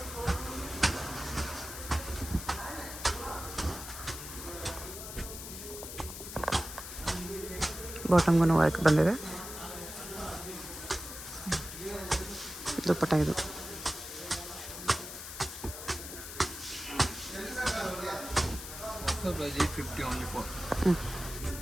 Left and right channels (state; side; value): noise; left; hiss, 9 dB below the sound